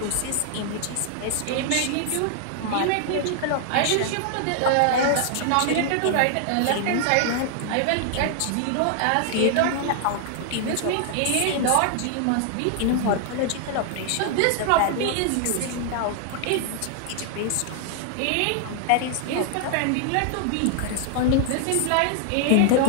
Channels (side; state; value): both; different; correlation 0.00